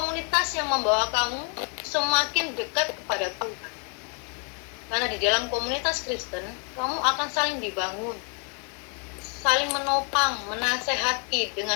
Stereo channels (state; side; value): quieter; right; 39.0 dB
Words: yang membawa kamu semakin dekat kepada Tuhan. Karena di dalam komunitas Kristen, kamu akan saling dibangun, saling menopang, menasehati